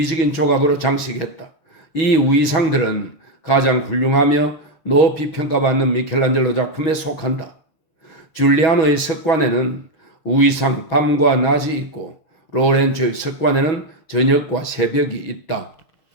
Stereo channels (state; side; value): late; right; 6.2 ms